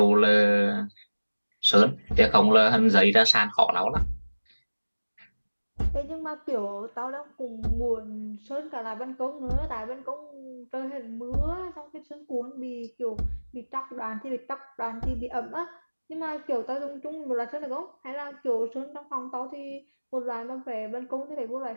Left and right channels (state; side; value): inverted; both; correlation -1.00